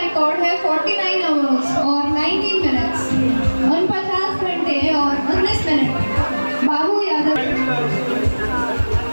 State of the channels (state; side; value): inverted; both; correlation -1.00